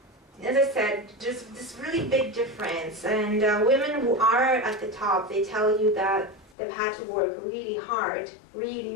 I said, there's this really big difference, and women who are at the top, they tell you that they've had to work really hard,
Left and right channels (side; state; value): right; drops out; at 6.6 s